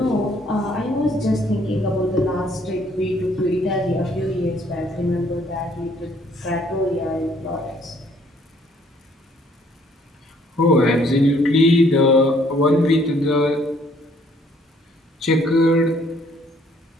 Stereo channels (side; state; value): both; normal; correlation 0.63